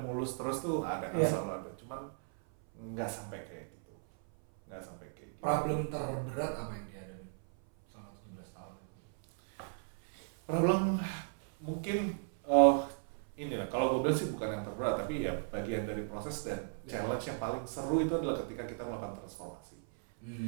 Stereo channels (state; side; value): silent; left; 54 dB below the other